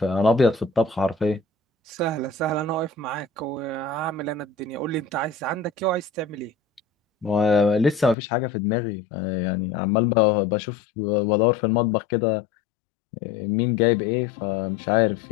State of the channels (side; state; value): right; drops out; at 8.2 s